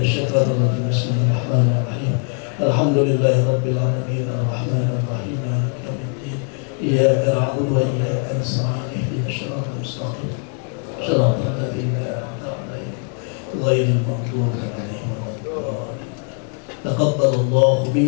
الشيطان الرجيم. بسم الله الرحمن الرحيم. الحمد لله رب العالمين الرحمن الرحيم مالك يوم الدين إياك نعبد وإياك نستعين اهدنا الصراط المستقيم صراط الذين أنعمت عليهم غير المغضوب عليهم ولا الضالين. تقبل الله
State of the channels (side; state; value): right; quieter; 39.8 dB